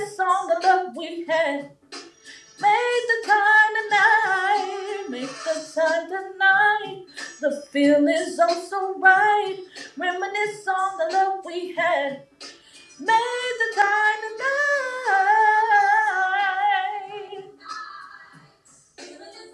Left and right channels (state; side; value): identical; both; correlation 1.00